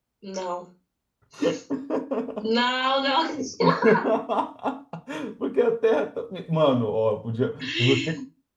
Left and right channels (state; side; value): identical; both; correlation 1.00